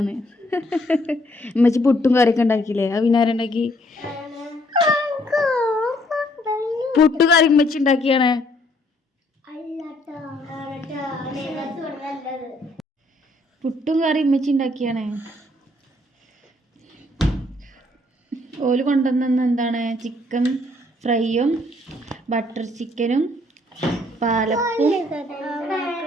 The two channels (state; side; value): normal; both; correlation 0.66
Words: ഉമ്മച്ചി പുട്ടും കറിയൊക്കെ ഉണ്ടാക്കിയില്ലേ? അത് പിന്നെ ആരുണ്ടാക്കി? പുട്ടു കറി ഉമ്മച്ചി ഉണ്ടാക്കിയാണ്. പുട്ടും കറി ഉമ്മച്ചി ഉണ്ടാക്കിയാണ്. ഓല് കൊണ്ടുവന്ന എന്താണ്? ചിക്കൻ ഫ്രൈയും ബട്ടർ ചിക്കനും പാലപ്പും